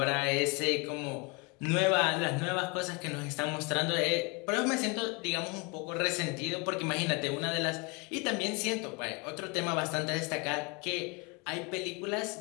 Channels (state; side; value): quieter; right; 29.5 dB